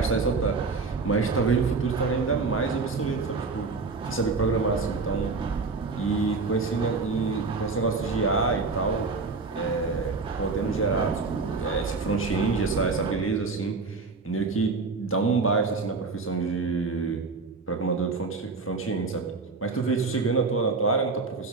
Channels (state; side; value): quieter; left; 4.1 dB